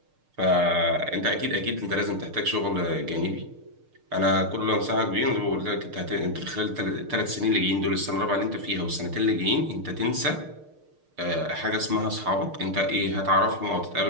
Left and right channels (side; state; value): left; late; 6.6 ms